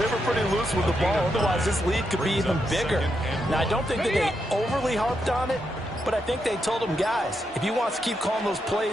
were pretty loose with the ball. Otherwise, this lead could be even bigger. Now, I don't think that they overly harped on it, but I think they told them, guys, if you want to keep calling those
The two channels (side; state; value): both; normal; correlation 0.82